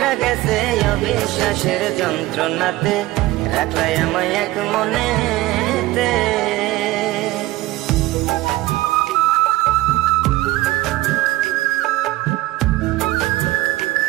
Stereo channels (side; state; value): left; quieter; 17.8 dB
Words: গেছে অবিশ্বাসের যন্ত্রণাতে। রাখলাই আমায় এক মনেতে।